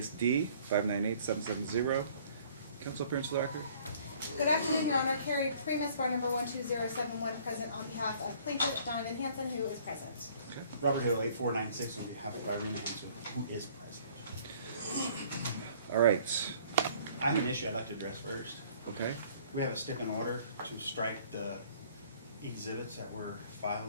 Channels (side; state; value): both; inverted; correlation -0.56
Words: D, 598770. Counsel appearance for the record. Good afternoon, Your Honor. Carrie Primus, bar number 12071, present on behalf of plaintiff Donovan Hansen, who is present. Okay. Robert Hill, 8496, on behalf of Robert Hansen, who is present. All right. I have an issue I'd like to address first. Okay. We have a stip in order to strike the exhibits that were